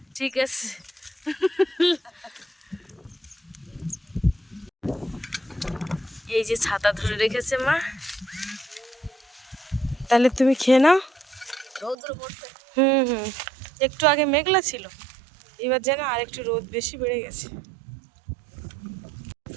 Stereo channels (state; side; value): drops out; left; at 12.0 s